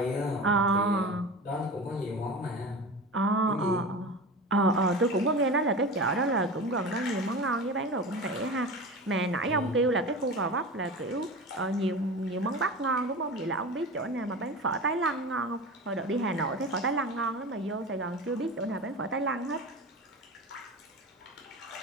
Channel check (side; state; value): both; normal; correlation 0.30